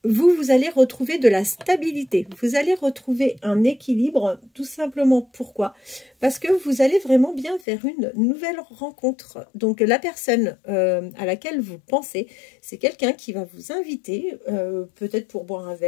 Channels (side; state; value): right; drops out; at 7.7 s